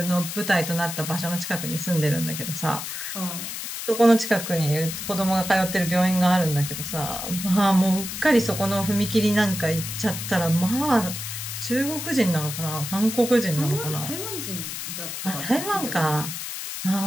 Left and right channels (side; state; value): left; noise; hiss, 6 dB below the sound